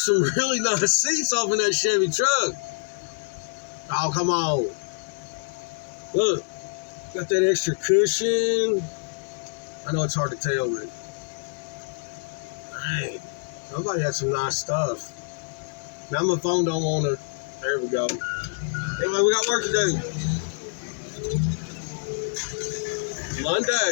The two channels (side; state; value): right; silent; digital silence